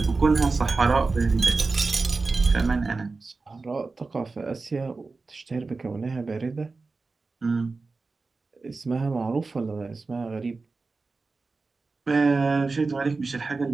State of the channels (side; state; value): left; quieter; 3.9 dB